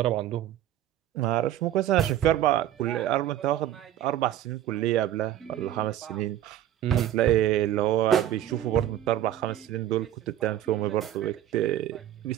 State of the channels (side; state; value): left; quieter; 12.2 dB